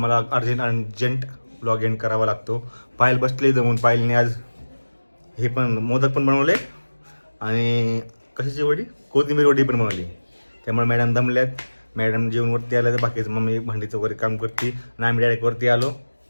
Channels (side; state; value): both; inverted; correlation -1.00